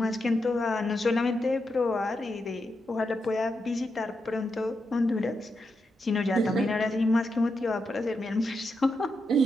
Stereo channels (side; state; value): both; normal; correlation 0.85